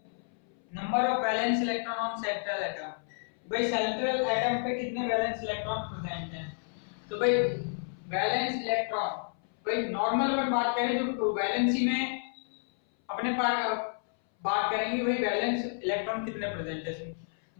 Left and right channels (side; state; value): right; silent; 57 dB below the other